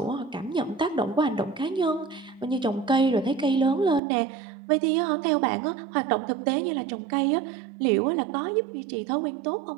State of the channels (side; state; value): left; drops out; at 4.0 s